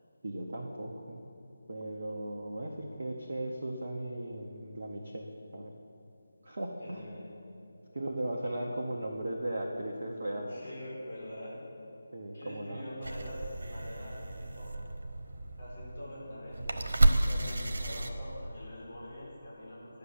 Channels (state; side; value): inverted; both; correlation -0.94